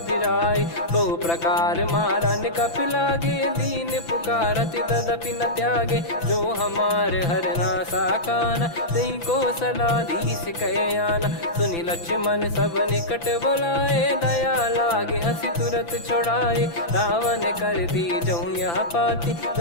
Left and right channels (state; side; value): late; right; 5.9 ms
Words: फिराई। बहु प्रकार मारन कपि लागे, दीन पुकारत तदपि न त्यागे। जो हमार हरना साकाना, तई को सलाधीश कहे आना। सुनि लक्ष्मण सब निकट बुलाए, दया लागे हंसी तुरत छुड़ाए। रावण कर दी जऊँ यहाँ पाती,